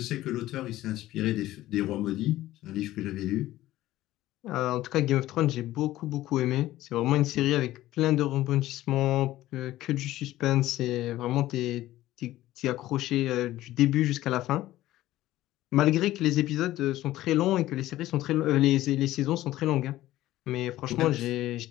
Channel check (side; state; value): right; quieter; 15.3 dB